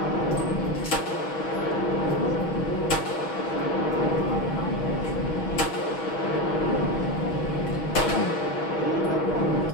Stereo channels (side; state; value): right; late; 6.2 ms